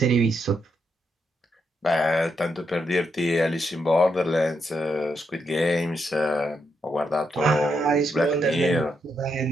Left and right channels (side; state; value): both; normal; correlation 0.80